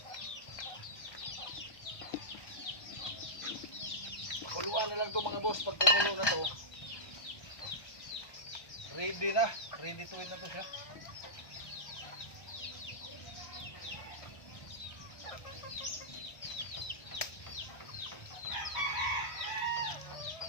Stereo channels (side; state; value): right; late; 1.2 ms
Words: Pakuluan na lang to mga boss. Pag kumulo na to, ready na. Ready to eat na to siya.